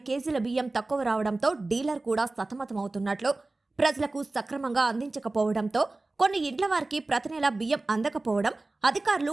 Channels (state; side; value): quieter; left; 3.1 dB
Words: కేజీల బియ్యం తక్కువ రావడంతో డీలర్ కూడా సతమతమవుతున్నట్లు, ప్రజలకు సక్రమంగా అందించకపోవడంతో కొన్ని ఇండ్ల వారికి ప్రతి నెల బియ్యం అందకపోవడం, అధికారులు